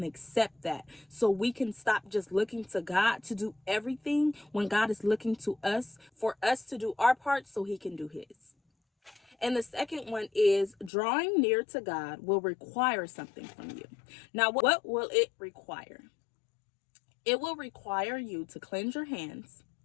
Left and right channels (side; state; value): right; drops out; at 10.9 s